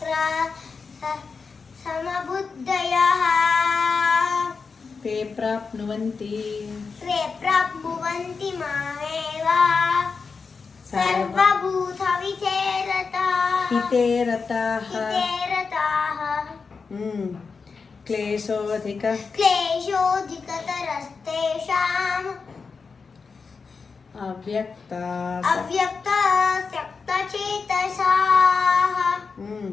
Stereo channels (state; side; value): quieter; right; 5.0 dB